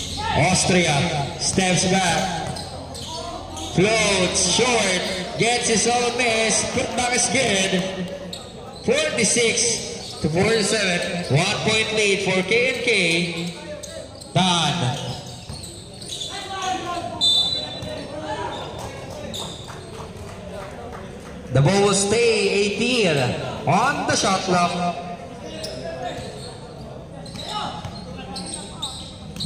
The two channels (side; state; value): both; identical; correlation 1.00